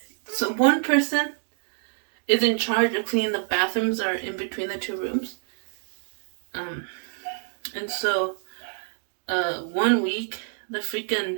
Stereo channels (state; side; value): silent; left; 56 dB below the other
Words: so one person is in charge of cleaning the bathrooms or in between the two rooms. And so 1 week the